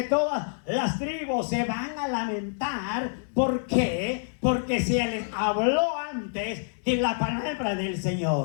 todas las tribus se van a lamentar. ¿Por qué? Porque se les habló antes de la palabra del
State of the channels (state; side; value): silent; right; digital silence